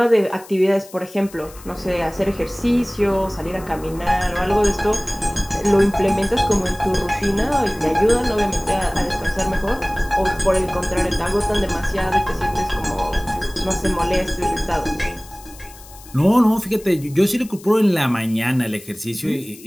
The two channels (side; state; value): left; noise; hiss, 20 dB below the sound